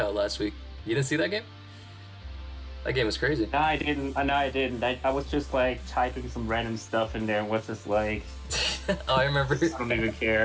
last week. You didn't see that game? That game was crazy. No, I didn't. I was just like typing some random stuff in there and was just like, Oh, I remember. I don't even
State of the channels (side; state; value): both; identical; correlation 1.00